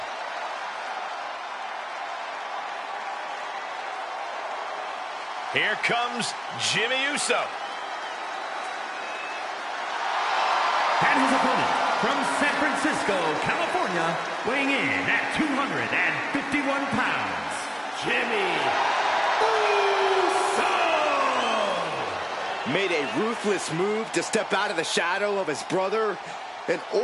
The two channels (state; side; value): identical; both; correlation 1.00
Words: Here comes Jimmy Uso. And his opponent from San Francisco, California, weighing in at 251 pounds, Jimmy Uso! Made a ruthless move to step out of the shadow of his brother in